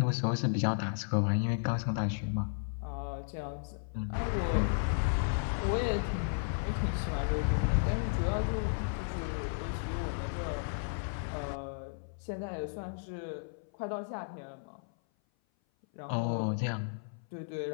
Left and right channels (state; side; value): silent; right; 55 dB below the other